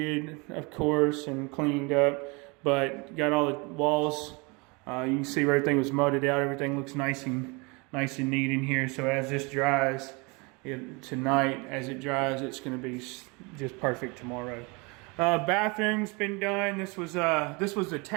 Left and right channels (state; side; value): quieter; left; 28.6 dB